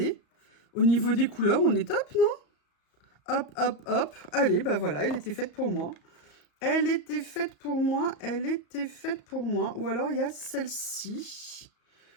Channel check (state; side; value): late; right; 34 ms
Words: Au niveau des couleurs, on est top, non? Hop, hop, hop. Allez, ben voilà, elle était faite pour moi. Elle était faite pour moi. Elle était faite pour moi. Ou alors, il y a celle-ci.